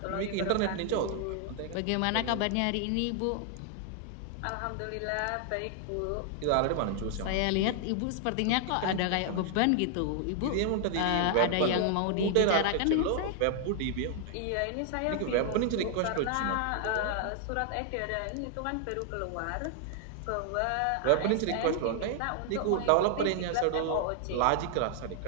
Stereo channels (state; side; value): different; both; correlation 0.00